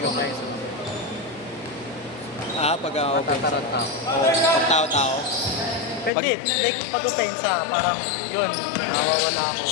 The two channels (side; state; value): right; drops out; at 6.1 s